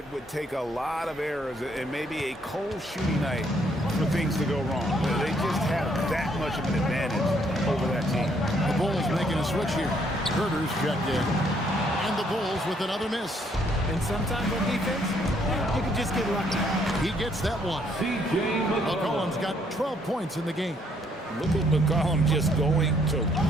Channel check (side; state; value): both; normal; correlation 0.68